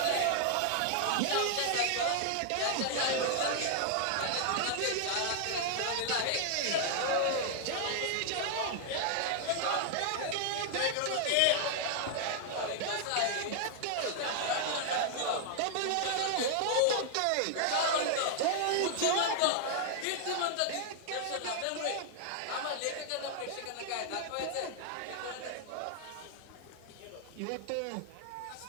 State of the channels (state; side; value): different; both; correlation 0.00